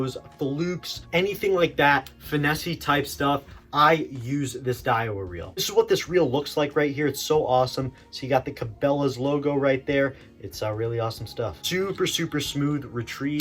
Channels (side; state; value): both; identical; correlation 1.00